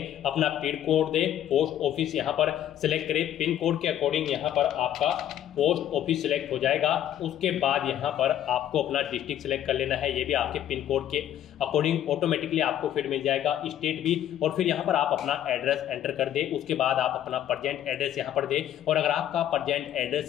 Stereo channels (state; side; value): quieter; right; 11.3 dB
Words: अपना पिन कोड दे, पोस्ट ऑफिस यहाँ पर सिलेक्ट करें। पिन कोड के अकॉर्डिंग यहाँ पर आपका पोस्ट ऑफिस सिलेक्ट हो जाएगा। उसके बाद यहाँ पर आपको अपना डिस्ट्रिक्ट सिलेक्ट कर लेना है, ये भी आपके पिन कोड के अकॉर्डिंग ऑटोमेटिकली आपको फिर मिल जाएगा, स्टेट भी। और फिर यहाँ पर आप अपना एड्रेस एंटर कर दे। उसके बाद आप अपना प्रेजेंट एड्रेस यहाँ पर दे, और अगर आपका प्रेजेंट